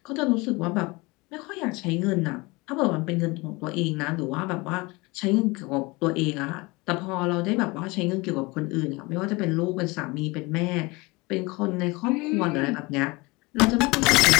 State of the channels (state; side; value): quieter; right; 24.6 dB